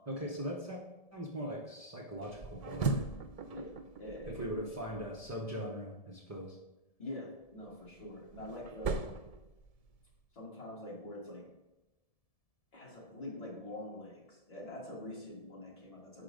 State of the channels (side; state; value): right; late; 1.7 ms